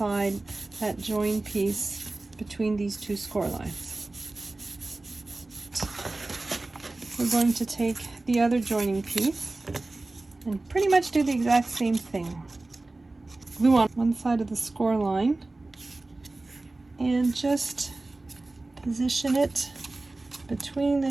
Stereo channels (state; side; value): quieter; left; 3.0 dB